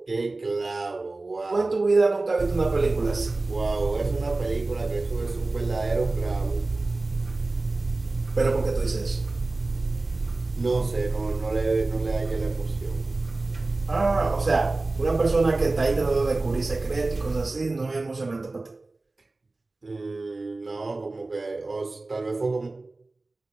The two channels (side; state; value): left; quieter; 3.2 dB